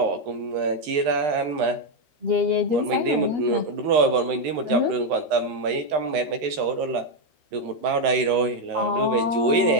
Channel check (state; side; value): late; left; 13 ms